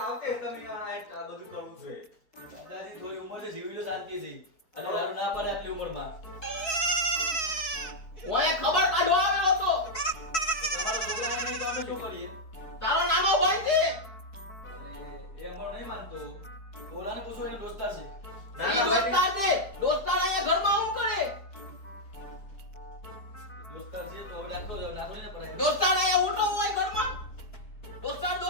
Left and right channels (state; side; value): late; right; 4.6 ms